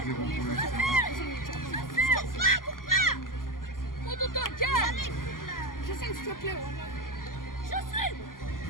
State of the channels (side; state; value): right; late; 0.91 ms